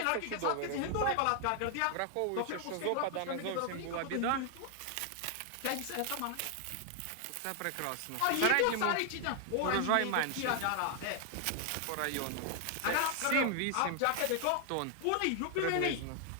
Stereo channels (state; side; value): different; both; correlation 0.00